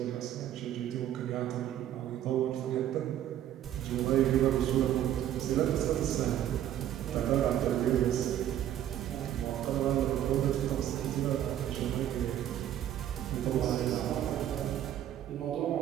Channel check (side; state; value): left; quieter; 11.5 dB